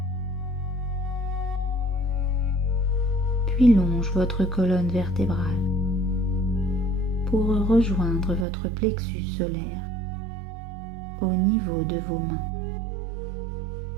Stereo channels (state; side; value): drops out; left; at 8.5 s